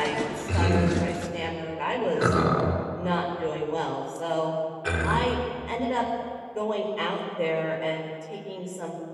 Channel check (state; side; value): identical; both; correlation 1.00